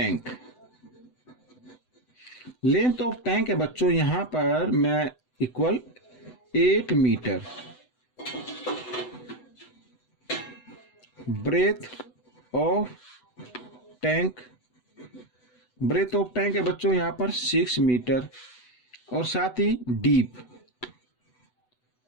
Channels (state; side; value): late; right; 8.0 ms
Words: Length of tank है बच्चों यहां पर मैं equal 8 metre. Breadth of tank है बच्चों यहां पर 6 मीटर, और साथ ही